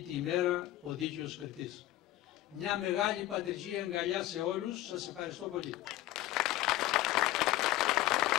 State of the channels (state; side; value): quieter; right; 15.5 dB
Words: ημέρα ο δίκαιος κριτής. Μια μεγάλη πατριζή αγκαλιά σε όλους, σας ευχαριστώ πολύ.